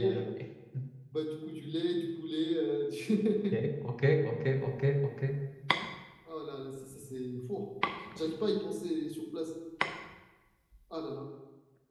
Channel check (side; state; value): both; identical; correlation 1.00